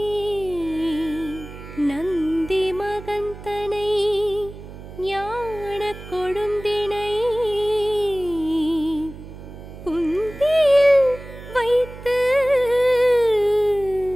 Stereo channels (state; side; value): noise; right; hum, 14 dB below the sound